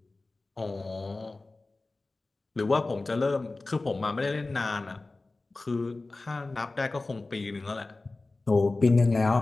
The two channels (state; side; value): quieter; right; 3.3 dB